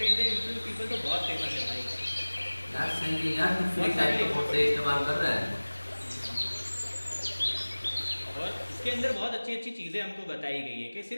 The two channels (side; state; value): both; inverted; correlation -1.00